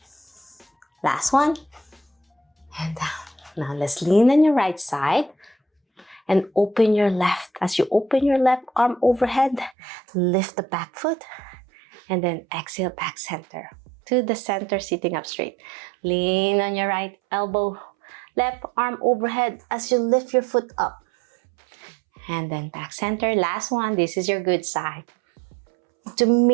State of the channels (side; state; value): left; drops out; at 9.8 s